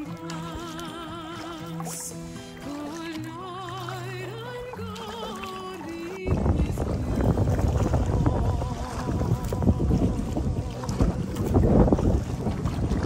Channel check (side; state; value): both; identical; correlation 1.00